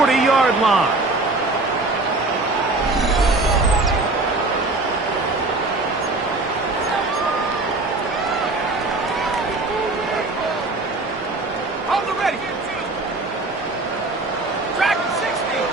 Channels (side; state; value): left; quieter; 3.1 dB